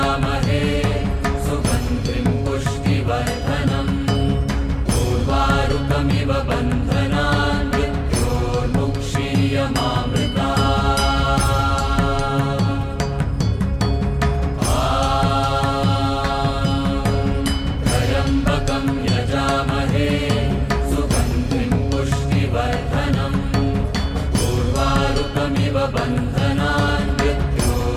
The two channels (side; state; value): both; identical; correlation 1.00